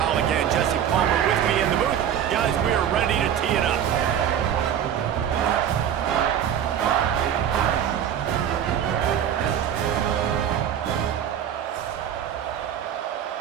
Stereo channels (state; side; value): quieter; left; 9.5 dB